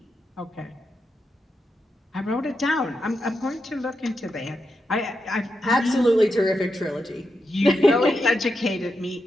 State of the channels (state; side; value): normal; both; correlation 0.86